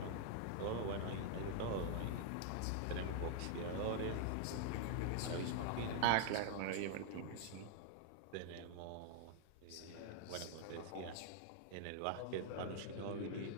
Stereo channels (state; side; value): different; both; correlation -0.01